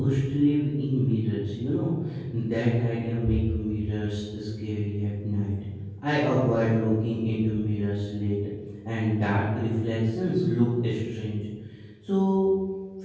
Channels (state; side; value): identical; both; correlation 1.00